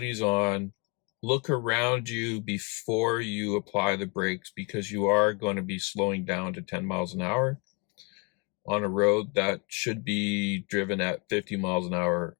on. Look around you before you apply the brakes, because you are going to be slowing down to 10 miles an hour on a road that should be driven at 50 miles an hour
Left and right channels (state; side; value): quieter; right; 30.7 dB